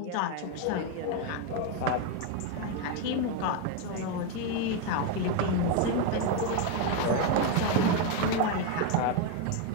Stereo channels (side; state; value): both; different; correlation 0.02